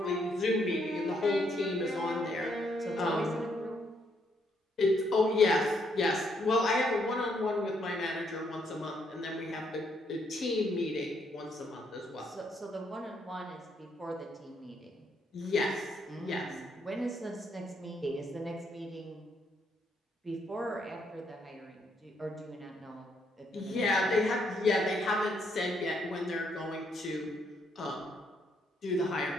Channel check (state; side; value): normal; both; correlation 0.73